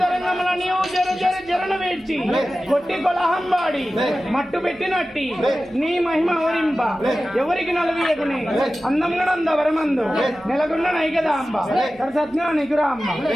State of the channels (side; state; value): right; noise; hum, 28 dB below the sound